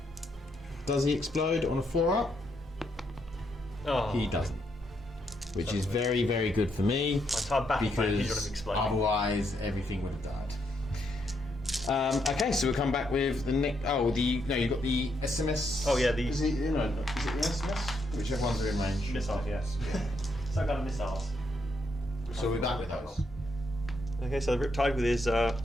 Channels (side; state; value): both; normal; correlation 0.77